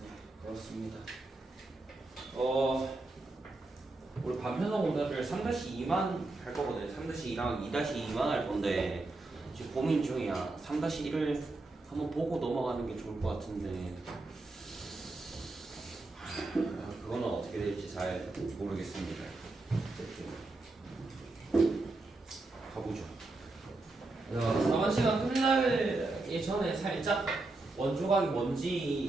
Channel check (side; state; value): left; quieter; 3.1 dB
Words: 그렇습니다. 우리 반편성 오늘을 3-2만 할 거거든요. 3-2랑 2-2만 할 건데 지금 고민 중이야. 3-1을 한번 보고 넘어가는 게 좋을 것 같은데 그거는 어떻게 될지 잘 모르겠습니다. 가보죠. 4번 시간 끝나기 전에 살짝 원조각이